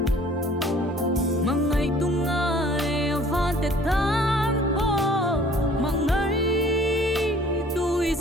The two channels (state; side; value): normal; both; correlation 0.53